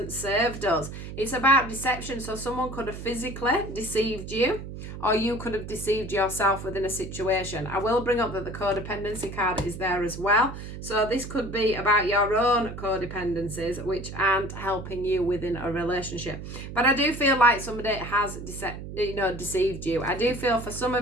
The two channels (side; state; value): right; noise; hum, 10 dB below the sound